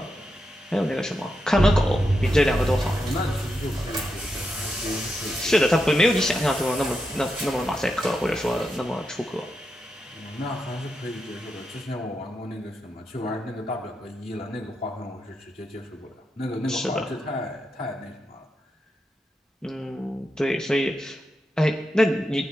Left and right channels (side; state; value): both; normal; correlation 0.86